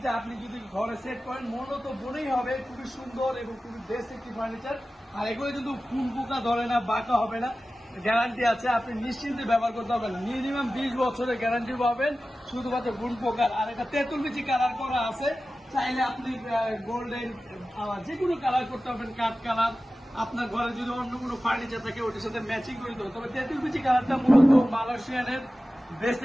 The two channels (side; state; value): both; normal; correlation 0.95